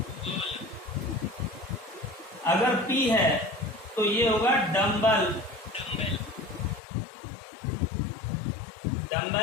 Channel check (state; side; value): drops out; right; at 6.8 s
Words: अगर P है तो ये होगा डम्बल।